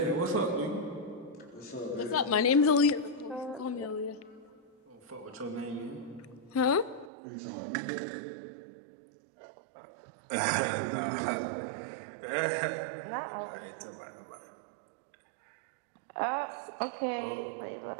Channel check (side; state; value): left; drops out; at 7.1 s